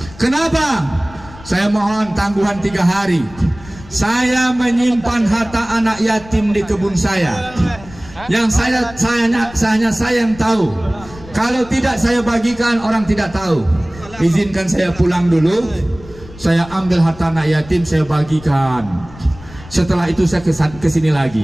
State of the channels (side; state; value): left; noise; rumble, 19 dB below the sound